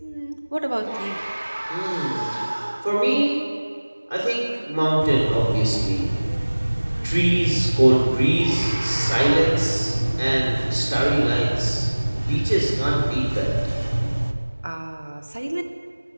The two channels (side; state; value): both; inverted; correlation -1.00